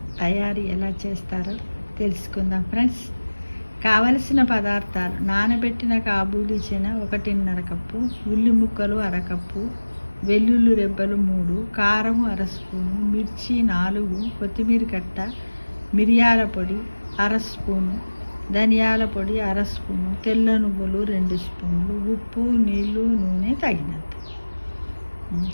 తయారీ ఎలా చేస్తారో తెలుసుకుందాం ఫ్రెండ్స్. కావలసిన పదార్థాలు: నానబెట్టిన కాబూలీ చెన 1.5 కప్పు, ఉల్లి ముక్కలు అరకప్పు, వెల్లుల్లి రెబ్బలు 3, కారం అర స్పూను, మిర్చి 4, కొత్తిమీర కట్ట, మిరియాల పొడి అర స్పూను, ధనియాల పొడి అర స్పూను, తెల్ల నువ్వులు 2 స్పూన్లు, ఉప్పు, నీళ్ళు, నూనె తగినంత.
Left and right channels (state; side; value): inverted; both; correlation -1.00